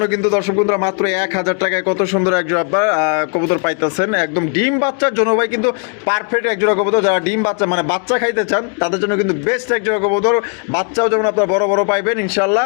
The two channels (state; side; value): quieter; right; 39.2 dB